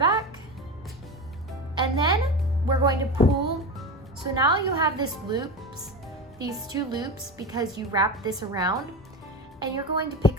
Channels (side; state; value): both; normal; correlation 0.24